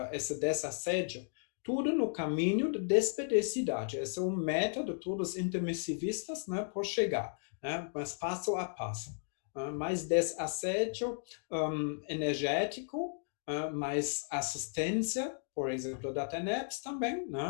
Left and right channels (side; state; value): right; silent; digital silence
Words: desassédio, tudo no caminho de despedicidade. Esse é um método, todos intermissivistas, né, por chegar, né? Mas passo a passo. Mais desassédio energético, mais assistência, por exemplo, da TENEPS também,